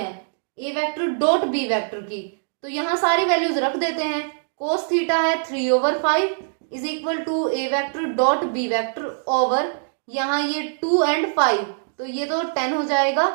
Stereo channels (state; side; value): silent; left; digital silence